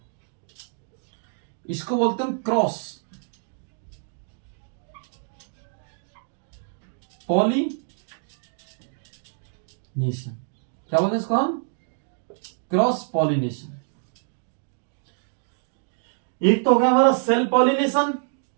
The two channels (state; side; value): silent; left; digital silence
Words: इसको बोलते हैं क्रॉस पॉलिनेशन। क्या बोलते हैं इसको हम? Cross pollination. एक तो हो गया हमारा सेल्फ पॉलिनेशन।